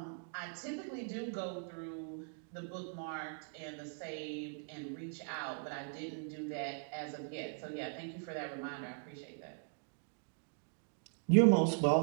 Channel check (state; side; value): silent; left; 51 dB below the other